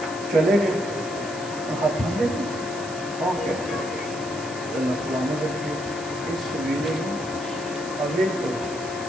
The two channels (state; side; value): noise; right; hiss, 14 dB below the sound